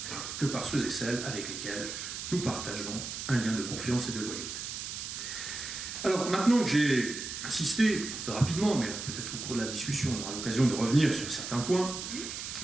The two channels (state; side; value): noise; right; hiss, 6 dB below the sound